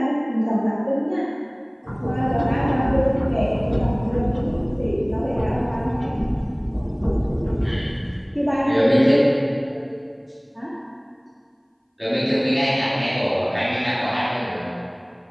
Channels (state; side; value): identical; both; correlation 1.00